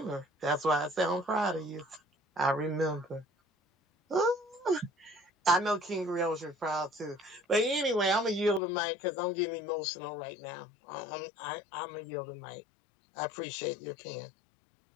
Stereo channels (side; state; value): right; drops out; at 8.6 s